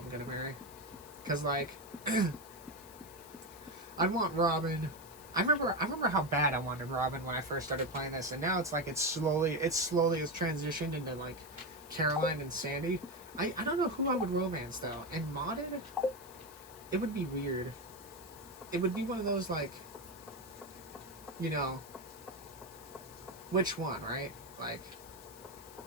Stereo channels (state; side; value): noise; left; hiss, 19 dB below the sound